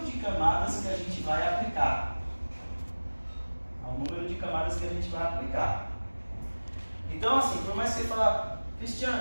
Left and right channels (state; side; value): inverted; both; correlation -1.00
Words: de camadas que a gente vai aplicar. Então assim, por mais que você fale,